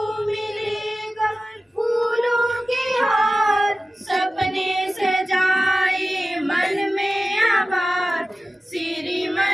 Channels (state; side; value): normal; both; correlation 0.95